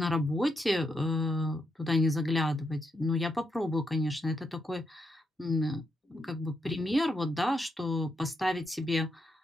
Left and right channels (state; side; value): normal; both; correlation 0.81